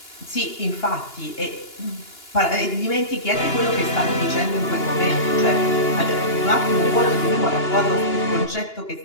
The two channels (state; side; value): late; right; 2.9 ms